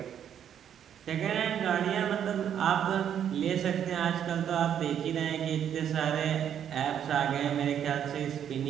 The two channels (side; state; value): left; quieter; 9.2 dB